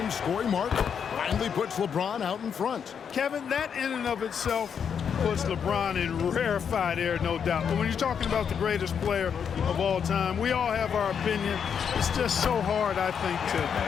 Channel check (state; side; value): quieter; right; 7.3 dB